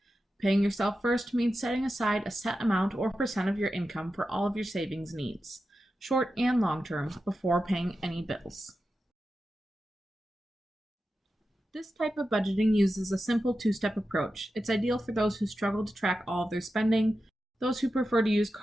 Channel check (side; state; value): both; normal; correlation 0.91